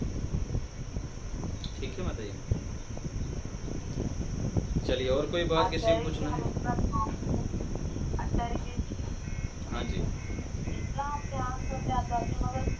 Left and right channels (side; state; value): both; identical; correlation 1.00